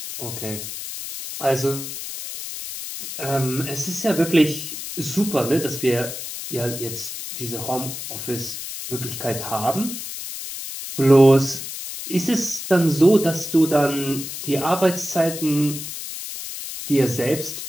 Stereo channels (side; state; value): left; noise; hiss, 8 dB below the sound